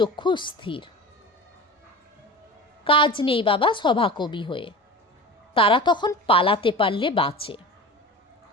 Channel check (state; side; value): normal; both; correlation 0.34